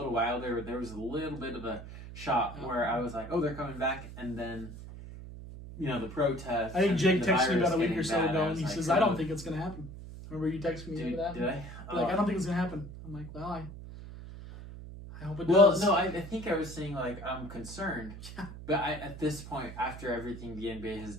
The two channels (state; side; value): noise; right; hum, 12 dB below the sound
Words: while there was a little bit of a shock where I was like, oh, they're coming back, and then, the protests. I think Jake texted me about a week or so ago, and he says, I don't think it's going to happen. Remember you texted me about that? Did I? I don't think it's going to happen. I'm like, well, I hope it does. Well, no, I think I was saying, like, I'm concerned. But at this point, after everything the NBA has